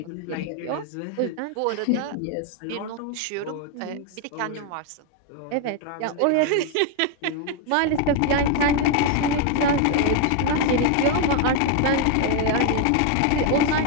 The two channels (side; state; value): both; different; correlation 0.01